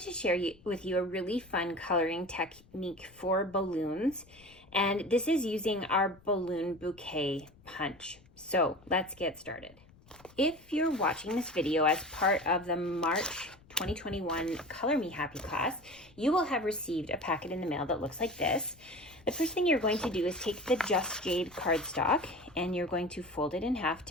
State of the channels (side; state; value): left; noise; rumble, 26 dB below the sound